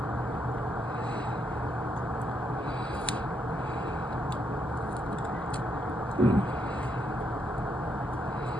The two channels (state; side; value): normal; both; correlation 0.77